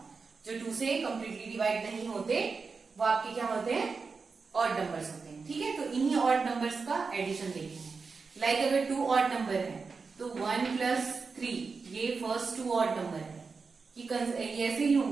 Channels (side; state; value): left; quieter; 4.7 dB